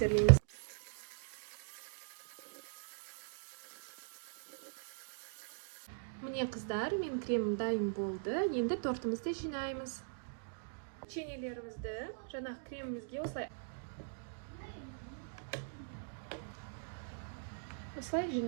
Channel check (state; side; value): silent; left; digital silence